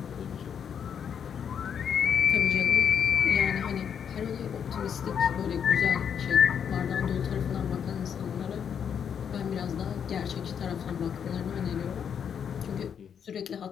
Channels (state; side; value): quieter; right; 7.8 dB